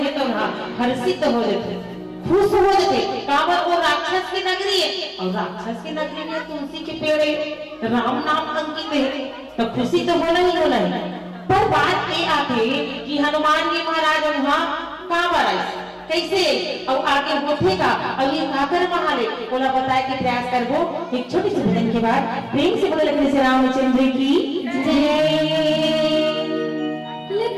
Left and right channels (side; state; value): both; identical; correlation 1.00